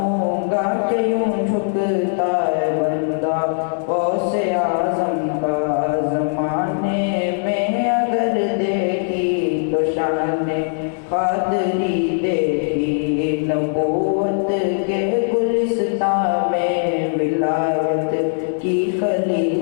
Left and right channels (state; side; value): silent; right; digital silence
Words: گا کہ یوں جھکتا ہے بندہ غوث اعظم کا زمانے میں اگر دیکھی تو شان قادری دیکھی نبوت کے گلستان میں ولایت کی کلی